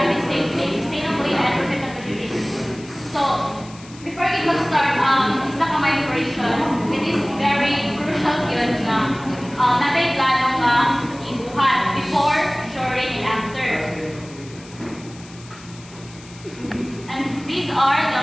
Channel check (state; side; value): noise; left; hiss, 21 dB below the sound